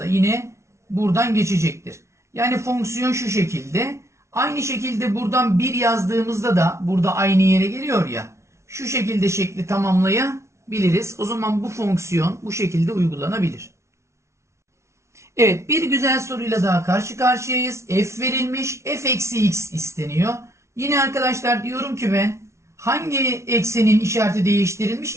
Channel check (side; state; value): left; late; 0.13 ms